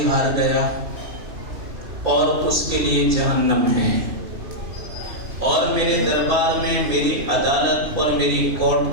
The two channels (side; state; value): left; late; 2.9 ms